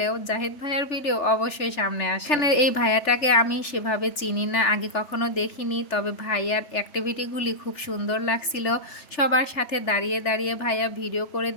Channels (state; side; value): late; right; 3.4 ms